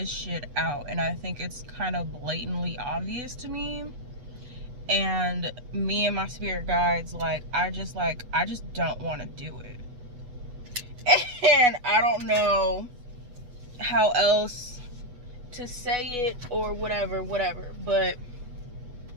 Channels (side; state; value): left; late; 8.1 ms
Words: shit out. And I think it's kind of blatantly obvious to me. And me and my spirit guides, I just don't want to do it. And I don't know how else to say it or whatever. But